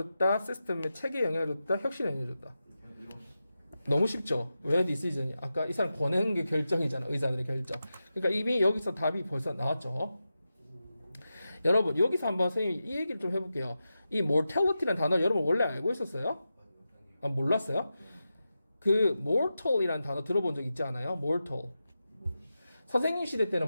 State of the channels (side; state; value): both; inverted; correlation -0.91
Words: 시스템의 체계에 영향을 줬다? 혁신에 영향을 줬다? 너무 쉽죠? 왜 디시전이? 아까 이 사람 권하는 게 결정이잖아. 의사들의 결정. 그러니까 이미 여기서 답이 벌써 나왔죠. 여러분, 여기서 한번 선생님이 이 얘기를 좀 해볼게요. 이 mortality라는 단어 여러분 원래 알고 있었어요? 아, 몰랐어요? 그 mortal이라는 단어 들어본 적 있지 않아요? mortal. 선생님 시대